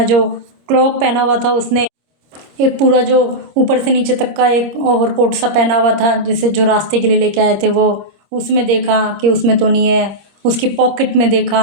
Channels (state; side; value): late; left; 26 ms